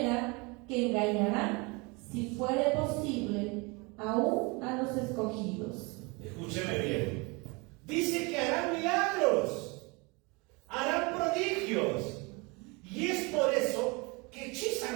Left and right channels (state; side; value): quieter; left; 27.9 dB